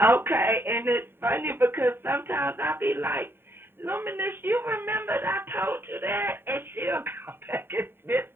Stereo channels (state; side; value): late; left; 0.11 ms